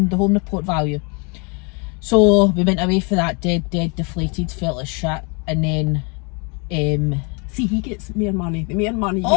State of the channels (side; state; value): right; quieter; 33.1 dB